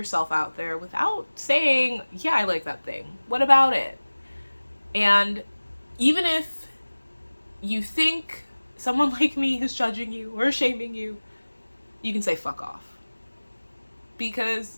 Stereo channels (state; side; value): inverted; both; correlation -1.00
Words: out there, without saying, yeah, I like that thing. What about it? And even if you think someone like me is judging you or shaming you, you can say fuck off.